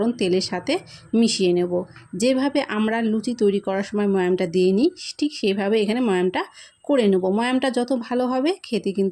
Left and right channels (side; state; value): both; identical; correlation 1.00